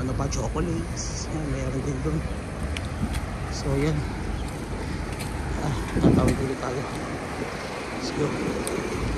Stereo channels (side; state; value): both; identical; correlation 1.00